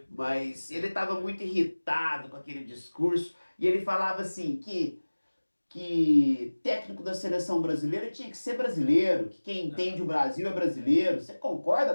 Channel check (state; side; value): inverted; both; correlation -1.00